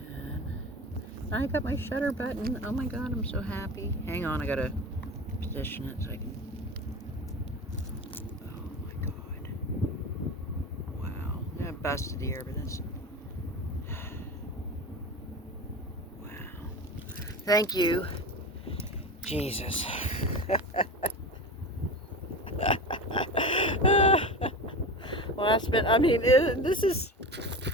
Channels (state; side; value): normal; both; correlation 0.28